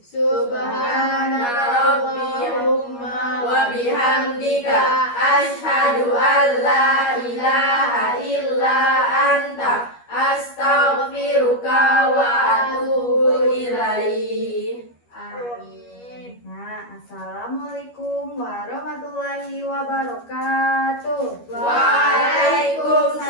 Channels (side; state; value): right; late; 12 ms